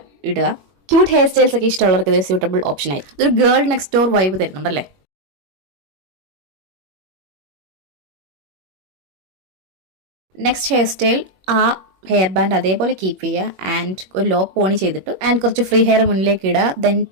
ഇടുക. ക്യൂട്ട് ഹെയർ സ്റ്റൈൽസ് ഒക്കെ ഇഷ്ടമുള്ളവർക്ക് ഇതൊരു സ്യൂട്ടബിൾ ഓപ്ഷൻ ആയിരിക്കും. ഇതൊരു ഗേൾ നെക്സ്റ്റ് ഡോർ വൈബ് തരുന്നുണ്ടല്ലേ. നെക്സ്റ്റ് ഹെയർ സ്റ്റൈൽ ആ ഹെയർ ബാൻഡ് അതേപോലെ കീപ്പ് ചെയ്യുക ആൻഡ് ഒരു ലോ പോണി ചെയ്തിട്ട് ആൻഡ് കുറച്ച് ഫ്രീ ഹെയർ മുന്നിലേക്ക് ഇടുക. Then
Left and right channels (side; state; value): left; late; 21 ms